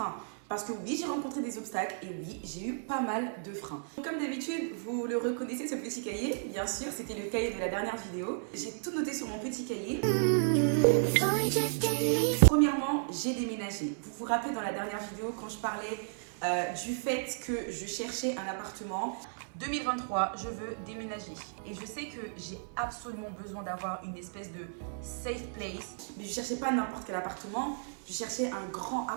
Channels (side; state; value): left; silent; 55 dB below the other